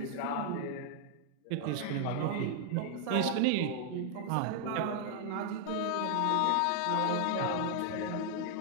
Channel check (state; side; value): different; both; correlation 0.00